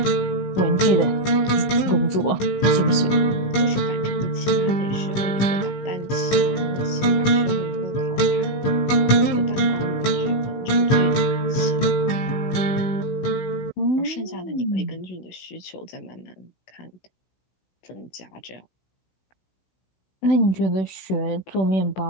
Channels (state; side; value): late; right; 16 ms